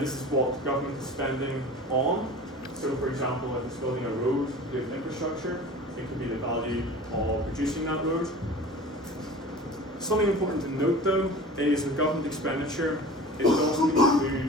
is what government is spending on. So for example, if it's building a road with infrastructure, it could be the value of reducing that road. Something important to note though is with government expenditure, it doesn't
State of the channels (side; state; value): both; normal; correlation 0.39